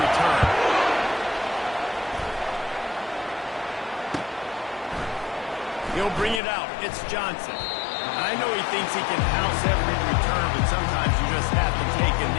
return. He'll bring it out. It's Johnson. I know he thinks he can house every return, but sometimes you just have to take a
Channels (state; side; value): drops out; right; at 6.4 s